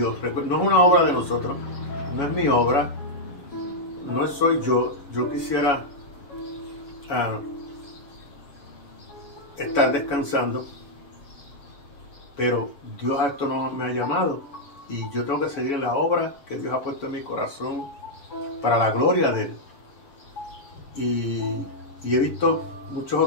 No es una obra de nosotros, no es mi obra, no soy yo. Yo quisiera estar descansando, pero Dios a esto no me ha llamado y yo tengo que seguir en la obra que Dios ha puesto en mi corazón para la gloria de Él. Y he visto muchos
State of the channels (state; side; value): late; right; 7.2 ms